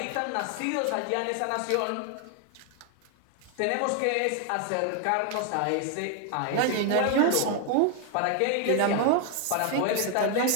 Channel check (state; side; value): different; both; correlation 0.00